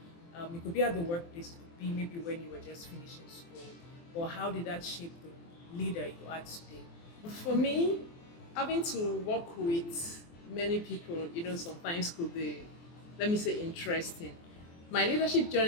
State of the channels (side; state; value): right; late; 24 ms